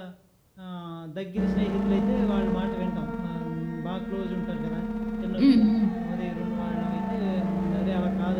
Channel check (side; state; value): both; identical; correlation 1.00